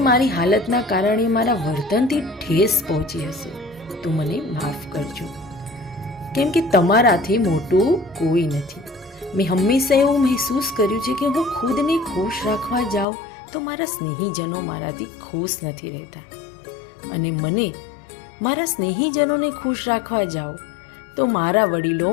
મારી હાલતના કારણે મારા વર્તનથી ઠેસ પહોંચી હશે, તો મને માફ કરજો, કેમ કે તમારાથી મોટું કોઈ નથી. મેં હંમેશા એવું મહેસૂસ કર્યું છે કે હું ખુદને ખુશ રાખવા જાઉં તો મારા સ્નેહીજનો મારાથી ખુશ નથી રહેતા, અને મને મારા સ્નેહીજનોને ખુશ રાખવા જાઉં તો મારા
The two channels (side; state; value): right; drops out; at 13.1 s